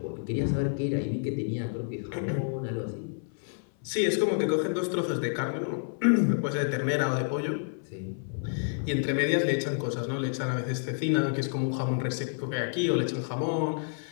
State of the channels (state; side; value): silent; right; 58 dB below the other